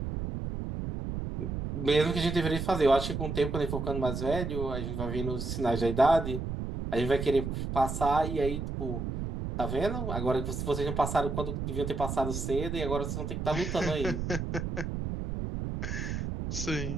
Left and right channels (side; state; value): right; noise; rumble, 4 dB below the sound